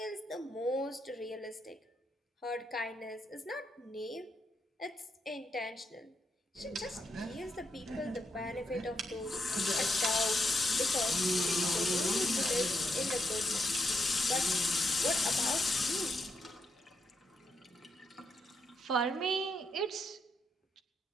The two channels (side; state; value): both; normal; correlation 0.79